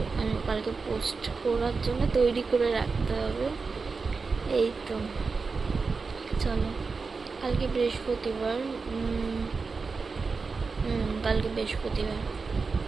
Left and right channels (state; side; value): quieter; left; 4.5 dB